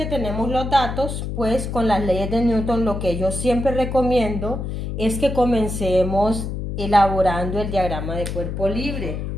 tenemos los datos, pues con las leyes de Newton lo que yo siempre recomiendo es que comencemos elaborando el diagrama de cuerpo libre.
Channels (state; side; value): noise; left; hum, 4 dB below the sound